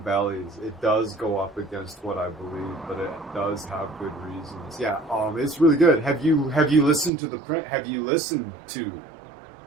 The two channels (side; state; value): left; drops out; at 7.1 s